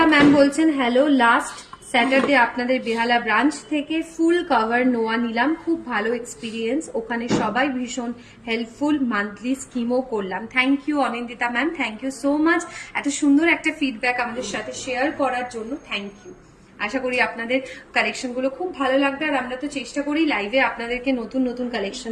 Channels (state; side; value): identical; both; correlation 1.00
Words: ম্যাম বলছেন হ্যালো, লাস্ট স্যাটারডে আপনাদের বেহালা ব্রাঞ্চ থেকে ফুল কভার নোয়া নিলাম, খুব ভালো এক্সপিরিয়েন্স, ওখানে সবাই ভীষণ হেল্পফুল, মান্থলি স্কিমও করলাম। Thank you Anindita ma'am, thank you so much এত সুন্দর একটা ফিডব্যাক আমাদের সাথে শেয়ার করার জন্য। Thank you. আশা করি আপনাদের কালেকশনগুলো খুব ভালো লাগবে, আর আমরা তো চেষ্টা করি লাইভে আপনাদেরকে নতুন নতুন